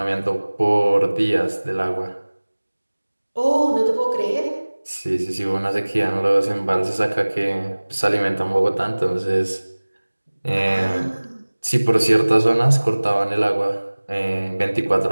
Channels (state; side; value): inverted; both; correlation -1.00